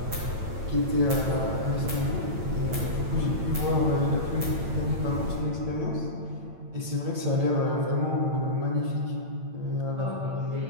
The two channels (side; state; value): left; late; 9.0 ms